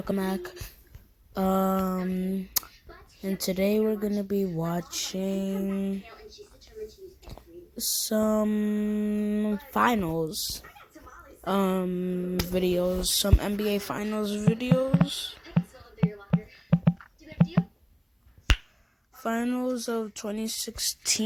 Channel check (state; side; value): identical; both; correlation 1.00